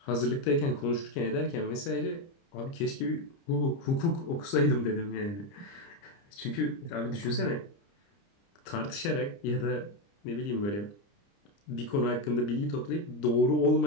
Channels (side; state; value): right; late; 30 ms